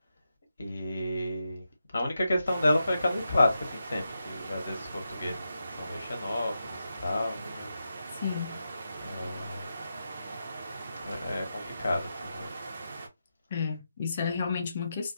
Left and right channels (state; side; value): inverted; both; correlation -0.87